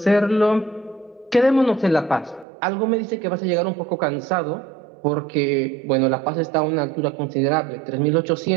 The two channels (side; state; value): left; drops out; at 2.5 s